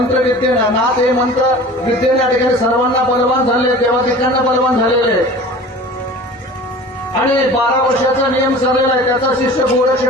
नाथ हे मंत्र विद्येने या ठिकाणी सर्वांना बलवान झाले, देवादिकांना बलवान झालेले. आणि 12 वर्षाचा नियम चाललेला आहे, त्याचा शिष्य गोरक्ष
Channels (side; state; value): both; normal; correlation 0.41